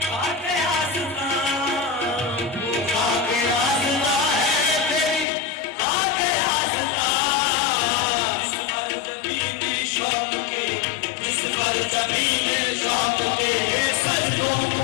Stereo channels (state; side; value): drops out; right; at 5.2 s